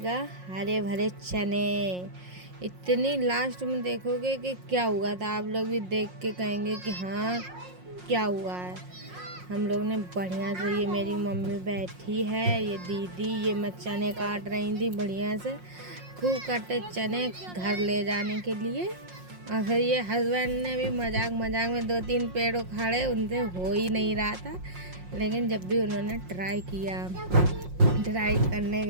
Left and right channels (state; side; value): late; left; 5.6 ms